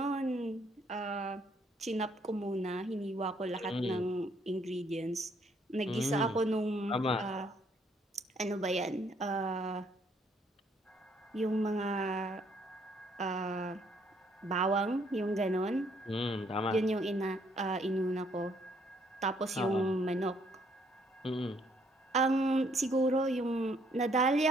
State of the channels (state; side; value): normal; both; correlation 0.67